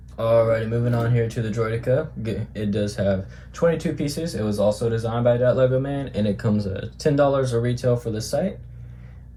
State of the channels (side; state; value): both; identical; correlation 1.00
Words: Alrighty, moving on here to the Droideka. It does have 22 pieces. It was also designed by that Lego man, and it comes at $10 a retail for the site.